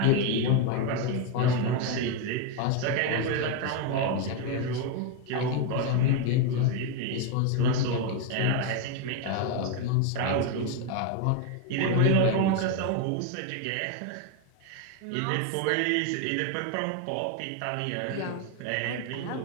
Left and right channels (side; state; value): both; different; correlation 0.01